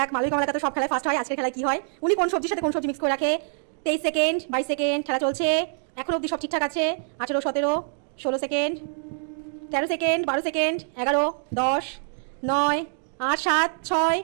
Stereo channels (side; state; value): left; silent; digital silence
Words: মালবিক কমলাকা তো সব খেলায় ফার্স্ট হয়, আজকের খেলায় কি হয়। উনি কোন সবজির সাথে কোন সবজি মিক্স করে রাখে। 23 সেকেন্ড, 22 সেকেন্ড। খেলা চলছে। এখন অবধি সব ঠিকঠাক আছে। 18, 17, 16 সেকেন্ড, 13 সেকেন্ড, 12 সেকেন্ড, 11, 10, 9, 8, 7, 6,